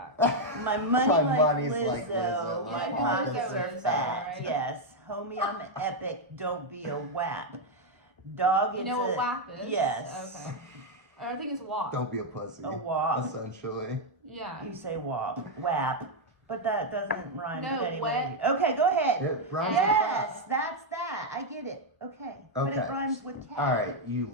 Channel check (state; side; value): normal; both; correlation 0.00